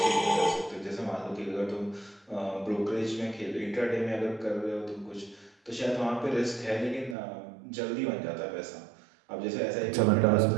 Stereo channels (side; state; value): left; drops out; at 7.2 s